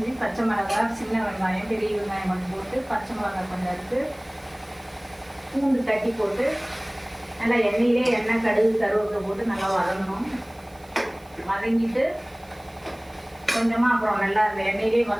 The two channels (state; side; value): noise; right; hiss, 28 dB below the sound